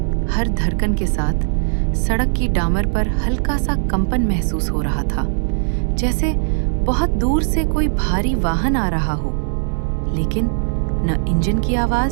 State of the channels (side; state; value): left; silent; digital silence